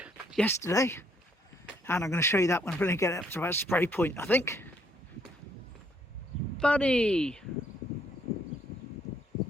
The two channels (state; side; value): normal; both; correlation 0.68